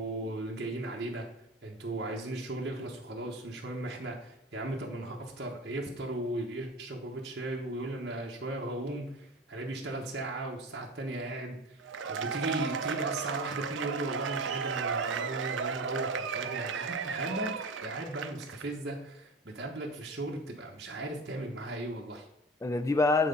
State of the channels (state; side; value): normal; both; correlation 0.32